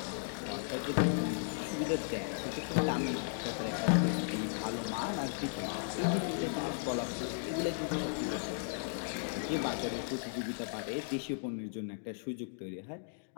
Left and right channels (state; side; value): silent; right; digital silence